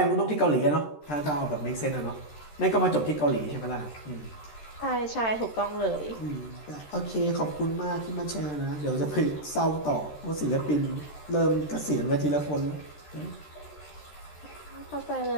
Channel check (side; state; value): right; late; 13 ms